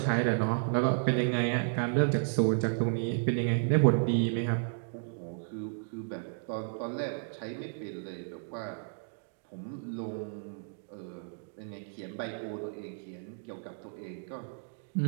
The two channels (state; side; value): silent; left; digital silence